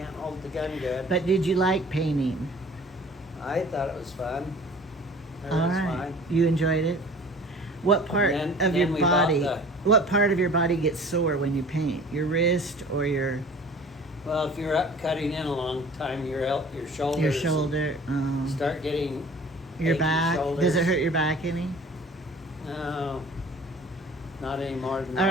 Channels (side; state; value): both; normal; correlation 0.46